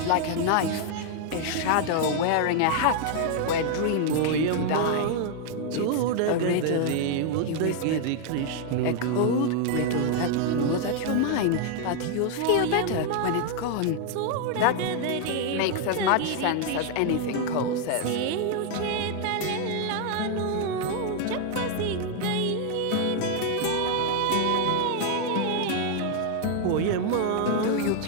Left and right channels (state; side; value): different; both; correlation 0.00